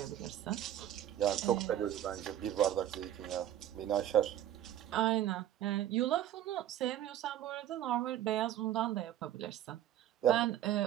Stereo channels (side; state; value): left; quieter; 11.8 dB